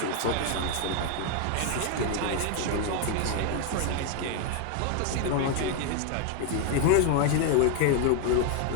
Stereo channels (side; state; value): both; different; correlation 0.01